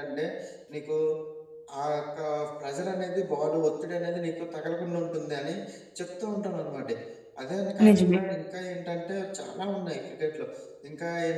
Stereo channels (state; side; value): identical; both; correlation 1.00